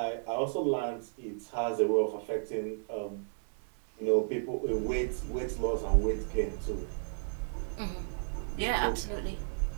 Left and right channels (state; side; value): silent; left; 56 dB below the other